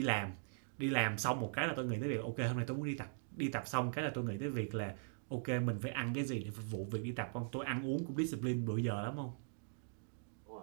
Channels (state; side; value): silent; left; digital silence